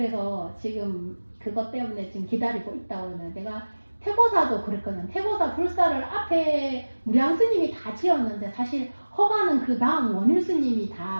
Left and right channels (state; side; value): inverted; both; correlation -1.00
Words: 지금 그것 때문에 지금 기다리고 있다고 그러는데 내가 태고사도 그랬거든. 태고사 불사를 앞에 무량 스님이 다 지었는데 사실 허가는 그 다음 원일 스님이